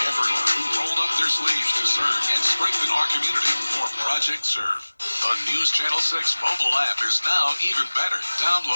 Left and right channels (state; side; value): inverted; both; correlation -1.00